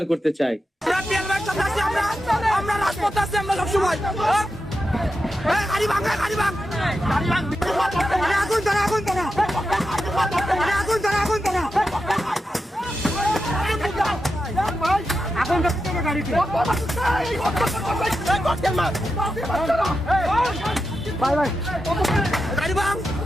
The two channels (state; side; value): normal; both; correlation 0.89